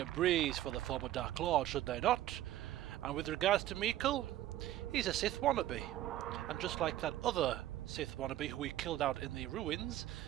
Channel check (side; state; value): left; quieter; 13.7 dB